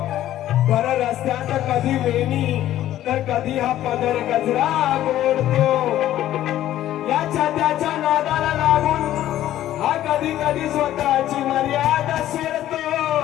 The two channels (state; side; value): quieter; right; 13.1 dB